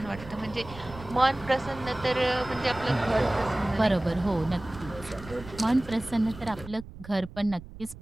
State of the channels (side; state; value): right; noise; rumble, 15 dB below the sound